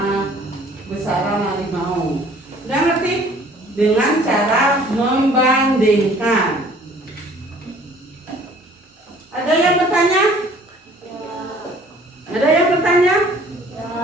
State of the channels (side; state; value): both; normal; correlation 0.54